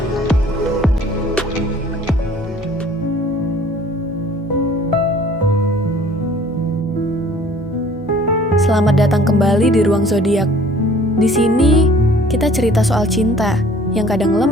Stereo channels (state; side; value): normal; both; correlation 0.53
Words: Selamat datang kembali di Ruang Zodiak. Di sini kita cerita soal cinta yang kadang